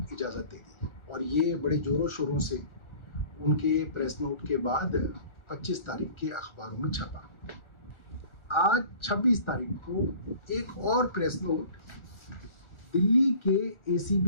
इजाज़त दे दी। और ये बड़े जोरों शोरों से उनके प्रेस नोट के बाद 25 तारीख के अखबारों में छपा। आज 26 तारीख को एक और प्रेस नोट दिल्ली के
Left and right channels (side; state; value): right; late; 1.4 ms